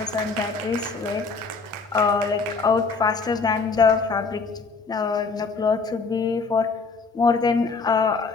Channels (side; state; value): right; quieter; 4.4 dB